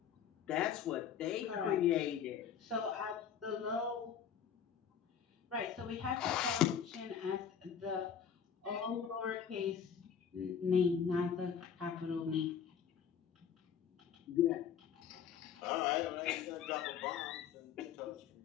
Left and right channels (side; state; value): right; quieter; 7.9 dB